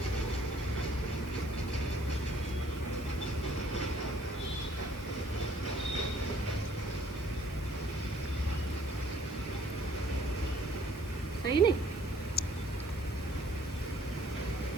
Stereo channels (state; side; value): normal; both; correlation 0.60